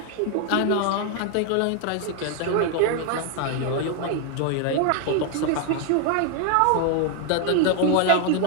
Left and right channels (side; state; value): both; different; correlation 0.00